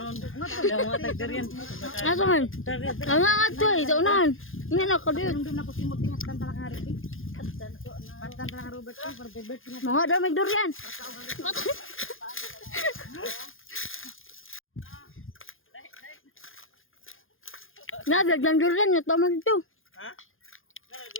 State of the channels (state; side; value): late; right; 0.59 ms